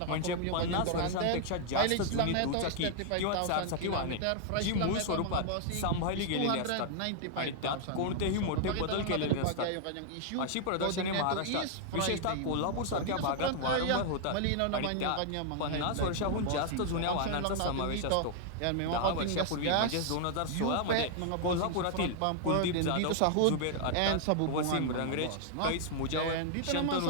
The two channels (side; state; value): both; different; correlation 0.00